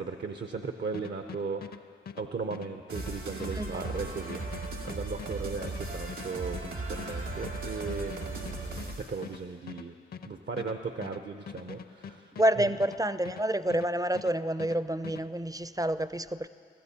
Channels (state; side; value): normal; both; correlation 0.64